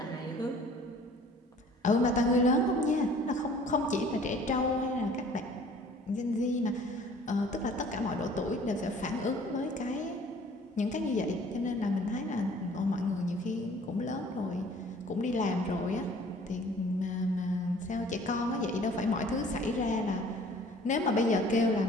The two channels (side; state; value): both; normal; correlation 0.52